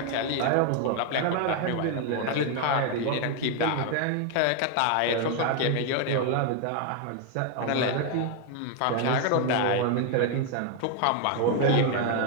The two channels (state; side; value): different; both; correlation 0.01